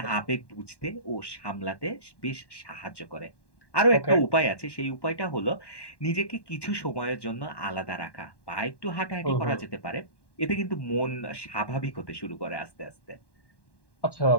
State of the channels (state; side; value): late; right; 1.1 ms